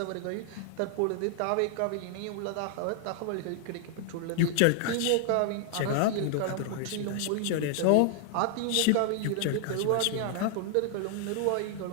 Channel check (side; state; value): both; different; correlation 0.00